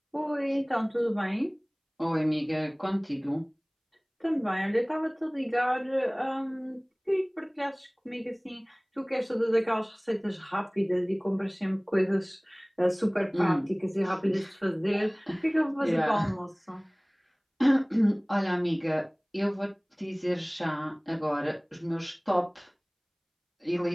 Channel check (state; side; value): identical; both; correlation 1.00